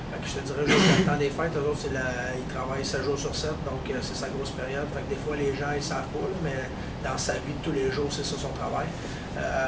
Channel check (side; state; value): both; identical; correlation 1.00